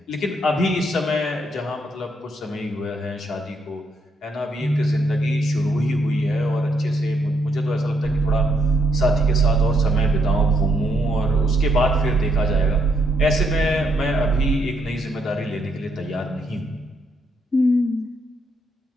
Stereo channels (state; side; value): normal; both; correlation 0.75